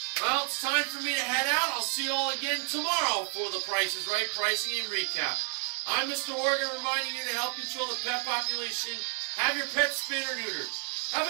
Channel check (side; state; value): left; quieter; 39.3 dB